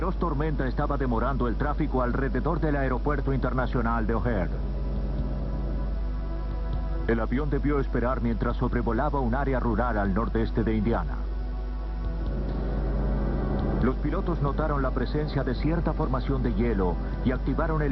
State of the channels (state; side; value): identical; both; correlation 1.00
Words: tormenta estaba demorando el tráfico alrededor del aeropuerto internacional de O'Hare. El avión debió esperar mientras sobrevolaba un área rural al nordeste de Indiana. Los pilotos notaron la presencia de cierta formación de hielo y activaron el